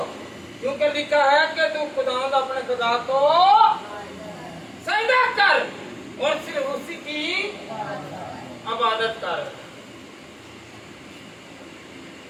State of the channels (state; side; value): identical; both; correlation 1.00